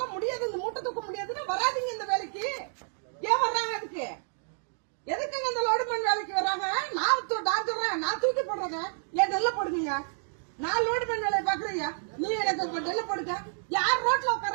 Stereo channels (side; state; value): left; silent; digital silence